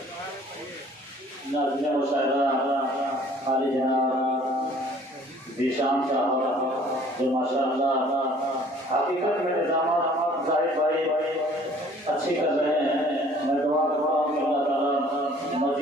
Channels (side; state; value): both; normal; correlation 0.54